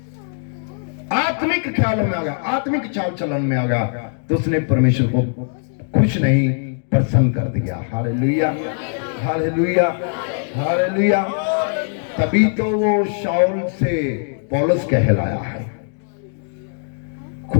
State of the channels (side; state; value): right; silent; 66 dB below the other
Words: आत्मिक ख्यालों में आ गया, आत्मिक चाल चलन में आ गया, तो उसने परमेश्वर को खुश नहीं प्रसन्न कर दिया। Hallelujah, hallelujah, hallelujah. तभी तो वो शाऊल से पौलुस कहलाया है।